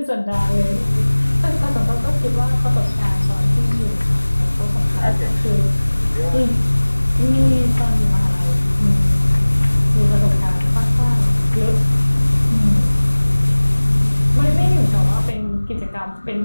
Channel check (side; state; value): both; inverted; correlation -1.00